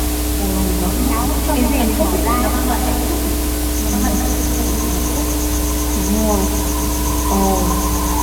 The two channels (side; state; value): both; identical; correlation 1.00